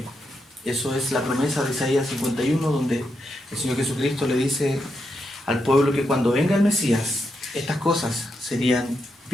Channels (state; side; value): normal; both; correlation 0.83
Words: Eso es la promesa de Isaías 51, donde el Señor Jesucristo le dice al pueblo que cuando venga el Mesías, estas cosas serían